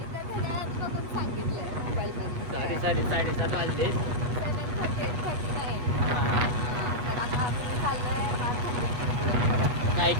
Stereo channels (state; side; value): late; left; 8.2 ms